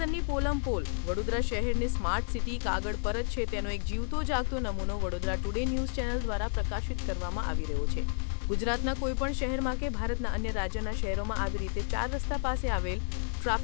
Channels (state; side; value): silent; right; 57 dB below the other